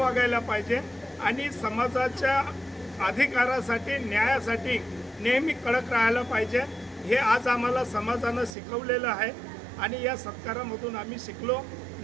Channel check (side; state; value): left; drops out; at 8.6 s